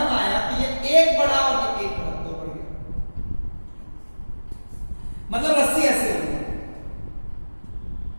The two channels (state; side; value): inverted; both; correlation -1.00